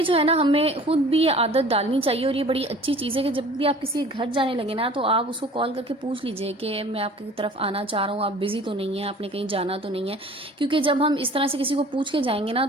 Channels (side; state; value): both; normal; correlation 0.47